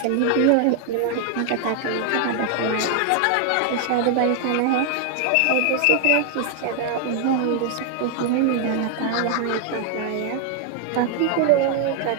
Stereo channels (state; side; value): different; both; correlation 0.00